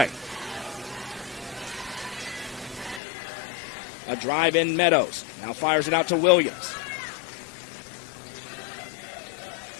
A drive in Meadows. Now fires it out to Williams.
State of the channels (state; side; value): drops out; right; at 3.0 s